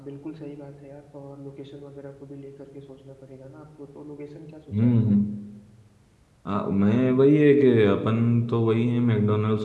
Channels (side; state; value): both; identical; correlation 1.00